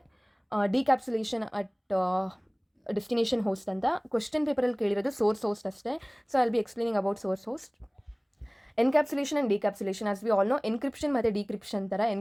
decapsulation at destination host ಅಂತ. Question ಪೇಪರಲ್ಲಿ ಕೇಳಿರೋದು source host ಅಷ್ಟೇ. So I'll be explaining about source host. Encapsulation and decapsulation, as we all know, encryption ಮತ್ತು decryption ಥರ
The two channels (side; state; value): both; identical; correlation 1.00